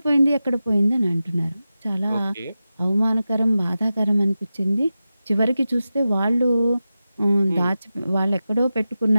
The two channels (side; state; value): both; inverted; correlation -0.93